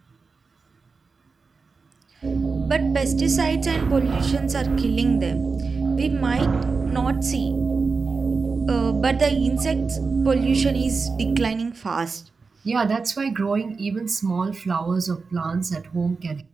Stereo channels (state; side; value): quieter; left; 4.5 dB